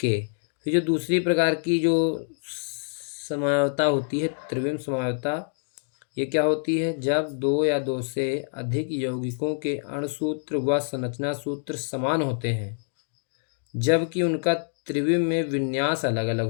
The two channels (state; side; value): silent; right; digital silence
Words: फिर जो दूसरी प्रकार की जो समवायवता होती है, त्रिविम समवायवता, ये क्या होती है? जब दो या दो से अधिक यौगिकों के अणुसूत्र व संरचना सूत्र समान होते हैं, जबकि उनका त्रिविम में विन्यास अलग